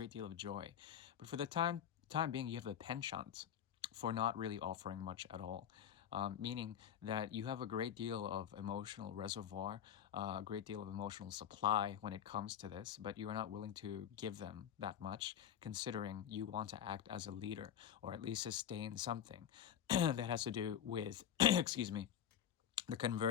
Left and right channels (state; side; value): quieter; right; 9.5 dB